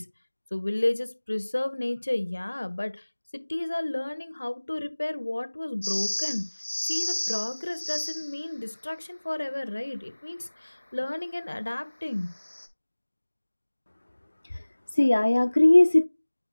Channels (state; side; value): inverted; both; correlation -1.00